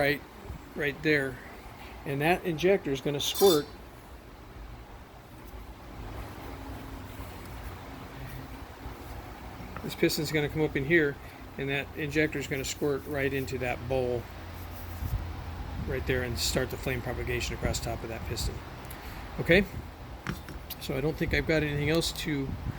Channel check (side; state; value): both; identical; correlation 1.00